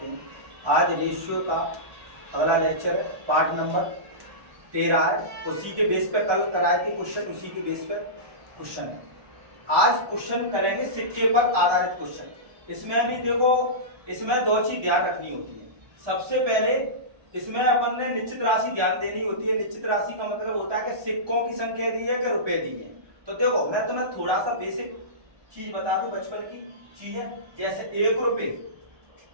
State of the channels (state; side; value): late; left; 1.2 ms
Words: हैं। आज रेशियो का अगला लेक्चर है, पार्ट नंबर 13 है। उसी के बेस पर कल कराए थे क्वेश्चन, उसी के बेस पर क्वेश्चन है। आज क्वेश्चन करेंगे सिक्के पर आधारित क्वेश्चन। इसमें भी देखो, इसमें दो चीज ध्यान रखनी होती है। सबसे पहले इसमें अपन ने निश्चित राशि ध्यान देनी होती है। निश्चित राशि का मतलब होता है कि सिक्कों की संख्या दी है कि रुपए दी है। तो देखो, मैं तुम्हें थोड़ा सा बेसिक चीज बता दूं, बचपन की चीज है। जैसे 1 रुपए,